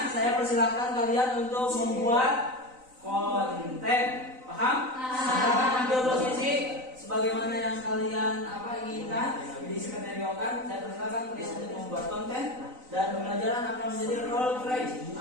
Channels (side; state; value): left; late; 3.9 ms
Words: saya persilahkan kalian untuk membuat konten. Paham? Silakan ambil posisi sebagaimana yang kalian inginkan, diskenario-kan. Saya persilahkan kalian untuk membuat konten dan pembelajaran akan menjadi role play